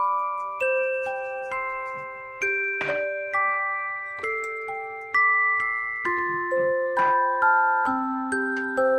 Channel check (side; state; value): both; identical; correlation 1.00